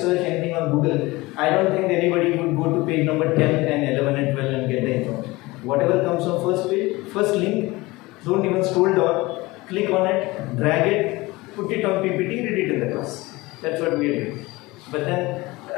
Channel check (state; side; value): quieter; right; 21.5 dB